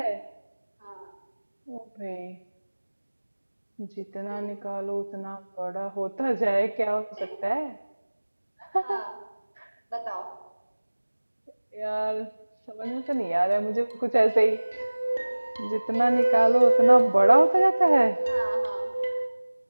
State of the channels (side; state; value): both; inverted; correlation -1.00